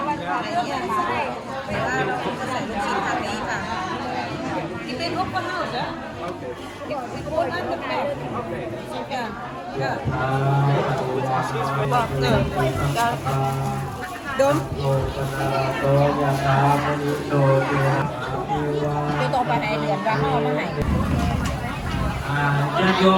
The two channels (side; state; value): both; identical; correlation 1.00